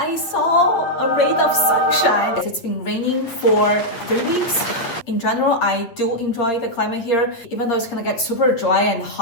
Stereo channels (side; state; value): right; late; 8.5 ms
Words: saw a ray of sunshine. It's been raining for 3 weeks. In general, I do enjoy the climate here, even though it's gonna get super dry and